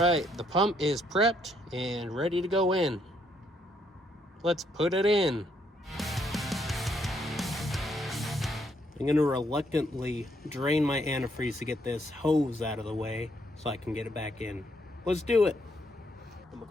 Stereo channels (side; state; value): both; normal; correlation 0.72